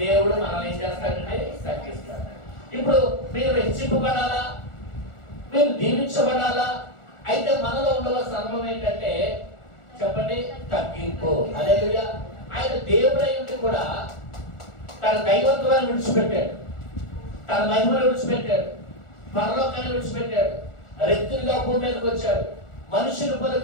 మనల్ని ఏం చేస్తాడంటే తగ్గిస్తాడు. ఇప్పుడు మీరు హెచ్చింపబడాలా, మీరు దీవించబడాలా, అయితే మనలో ఉండవలసిన అనుభవం ఏంటంటే చెప్పండి తగ్గింపు. హల్లెలూయా. ఆయన దేవుడై ఉండి కూడా తన దైవత్వాన్ని విడిచిపెట్టాడు, తన మహిమను విడిచిపెట్టాడు, పరలోకాన్ని విడిచిపెట్టాడు, రెత్తులుగా భూమి మీదకి వచ్చాడు, మనుషుల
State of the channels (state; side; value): late; right; 1.4 ms